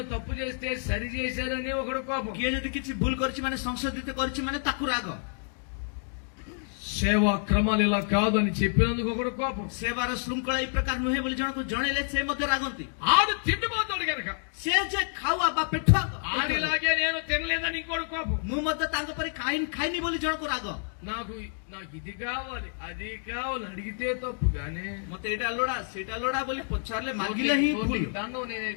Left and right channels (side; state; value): right; silent; 59 dB below the other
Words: తప్పు చేస్తే సరి చేశారని ఒకడు కోపం କିଏ ଯଦି କିଛି ଭୁଲ କରିଛି ମାନେ ସଂଶୋଧିତ କରିଛି ମାନେ ତାକୁ ରାଗ సేవా క్రమాలు ఇలా కాదు అని చెప్పినందుకు ఒకడు కోపం ସେବାର ଶୃଙ୍ଖଳା ଏଇ ପ୍ରକାର ନୁହେଁ ବୋଲି ଜଣକୁ ଜଣେଇଲେ ସେ ମଧ୍ୟ ରାଗନ୍ତି ఆడు తిండిపోతాడు కనుక ସେ ଯେ ଖାଉଆ ବା ପେଠୁଆ ఆడిలాగే నేను తినలేదని ఇంకోటి కోపం ମୁଁ ମଧ୍ୟ ତାଙ୍କ ପରି ଖାଇନି ବୋଲି ଜଣକୁ ରାଗ నాకు నాకు ఇది కావాలి అది కావాలి అడిగితే తప్పు కానీ ମତେ ଏଇଟା ଲୋଡ଼ା ସେଇଟା ଲୋଡ଼ା ବୋଲି ପଚାରିଲେ ମାଗିଲେ ହିଁ ଭୁଲ దాన్ని నేను